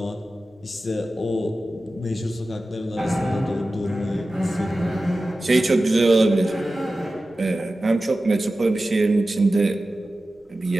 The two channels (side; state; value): both; normal; correlation 0.95